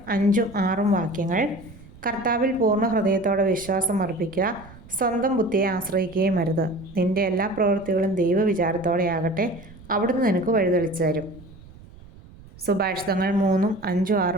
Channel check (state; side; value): noise; right; rumble, 20 dB below the sound